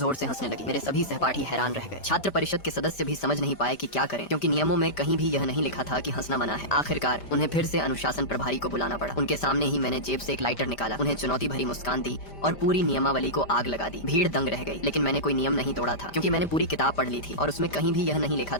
से हंसने लगी। मेरे सभी सहपाठी हैरान रह गए। छात्र परिषद के सदस्य भी समझ नहीं पाए कि क्या करें, क्योंकि नियमों में कहीं भी यह नहीं लिखा था कि हंसना मना है। आखिरकार उन्हें फिर से अनुशासन प्रभारी को बुलाना पड़ा। उनके सामने ही मैंने जेब से एक लाइटर निकाला, उन्हें चुनौती भरी मुस्कान दी और पूरी नियमावली को आग लगा दी। भीड़ दंग रह गई, लेकिन मैंने कोई नियम नहीं तोड़ा था, क्योंकि मैंने पूरी किताब पढ़ ली थी और उसमें कहीं भी यह नहीं लिखा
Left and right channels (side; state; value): right; late; 5.1 ms